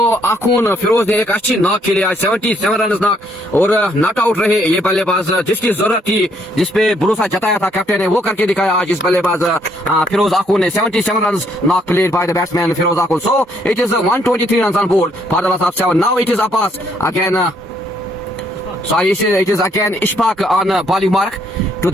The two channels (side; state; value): both; normal; correlation 0.69